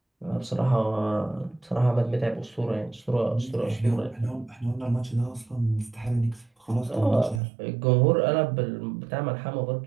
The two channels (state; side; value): drops out; left; at 7.4 s